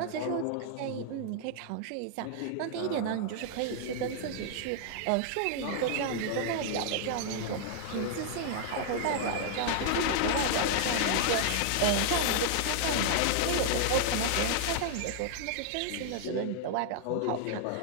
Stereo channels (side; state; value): both; different; correlation 0.00